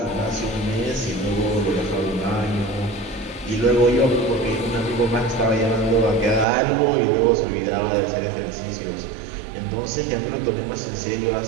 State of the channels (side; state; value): left; drops out; at 6.5 s